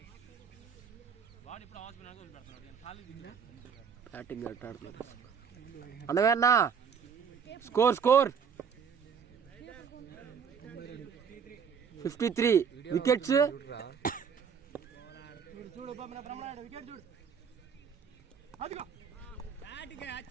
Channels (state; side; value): quieter; left; 6.8 dB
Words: వాడు ఇప్పుడు హాస్పిటల్ వదిలిపెడుతున్నాడు ఖాళీ బ్యాటింగ్ ఎట్ ఆడుతున్నారు. అన్నవేనా స్కోర్ 53 వికెట్స్. చూడు బ్రహ్మనాయుడు వికెట్ చూడు. అదిగో batting